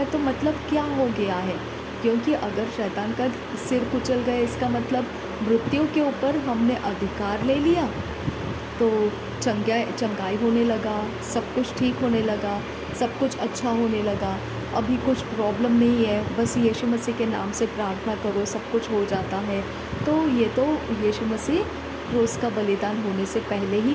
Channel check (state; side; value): identical; both; correlation 1.00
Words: तो मतलब क्या हो गया है। क्योंकि अगर शैतान का सिर कुचल गया इसका मतलब मृत्यु के ऊपर हमने अधिकार ले लिया, तो चंगाई होने लगा, सब कुछ ठीक होने लगा, सब कुछ अच्छा होने लगा, अभी कुछ प्रॉब्लम नहीं है, बस यीशु मसीह के नाम से प्रार्थना करो सब कुछ हो जाता है। तो ये तो यीशु मसीह क्रूस का बलिदान होने से पहले ही